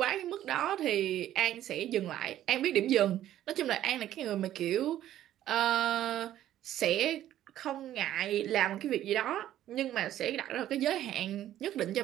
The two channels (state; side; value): quieter; left; 12.5 dB